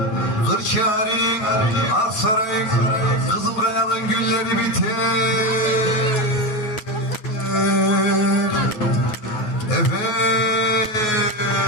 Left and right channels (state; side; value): late; right; 9.4 ms